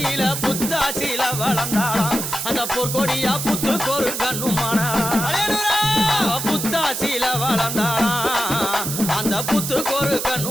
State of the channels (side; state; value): right; noise; hiss, 4 dB below the sound